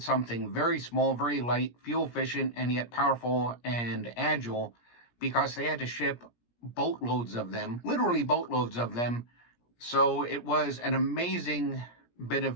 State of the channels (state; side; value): late; right; 17 ms